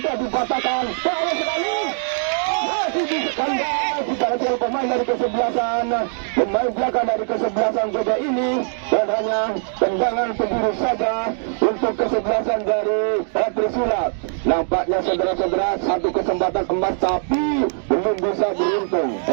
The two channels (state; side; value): silent; left; digital silence